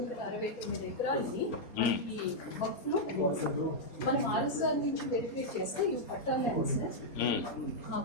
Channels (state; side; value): late; right; 4.3 ms